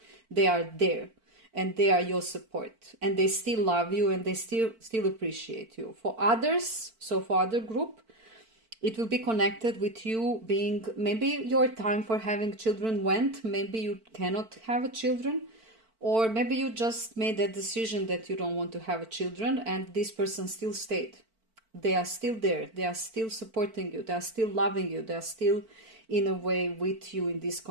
They are there. And they are your support, and they still love you, and they still appreciate you. For others, so for other group, it will be connected with you being, maybe your time for having children went, maybe you cannot have a children, or maybe you just made that decision that you don't want to have a children, and this person still stayed. They are still there, they are still supporting you, they are still loving you, they are still in a way with you in this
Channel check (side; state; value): left; late; 4.5 ms